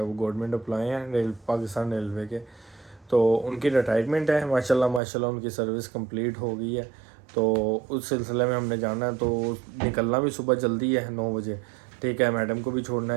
वो गवर्नमेंट एम्प्लॉय हैं पाकिस्तान रेलवे के, तो उनकी रिटायरमेंट है। माशाल्लाह उनकी सर्विस कंप्लीट हो गई है, तो उस सिलसिले में हमने जाना है। तो निकलना भी सुबह जल्दी है 9 बजे, ठीक है। मैडम को भी छोड़ना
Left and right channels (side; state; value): left; drops out; at 5.0 s